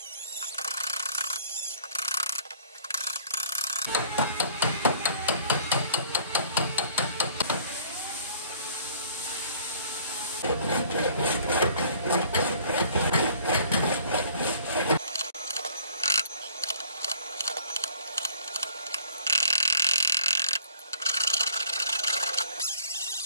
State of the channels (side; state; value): both; inverted; correlation -0.55